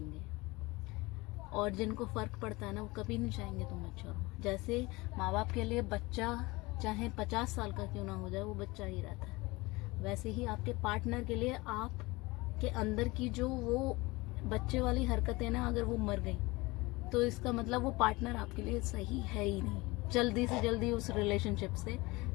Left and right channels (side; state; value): right; quieter; 22.7 dB